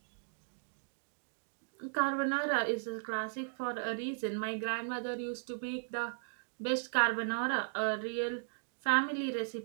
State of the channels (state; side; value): silent; left; digital silence